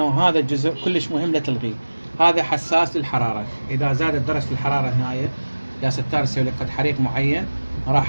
هذا الجزء كلش مهم لا تلغيه. هذا حساس للحرارة، إذا زادت درجة الحرارة هنا يا ستار يسوي لك قد حريق معين،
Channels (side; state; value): both; inverted; correlation -1.00